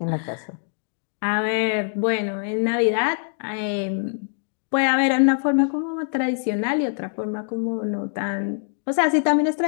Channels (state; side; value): silent; right; digital silence